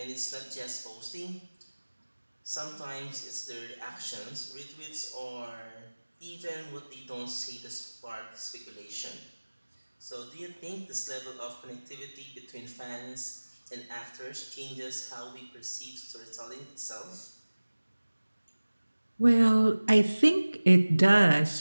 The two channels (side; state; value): both; inverted; correlation -1.00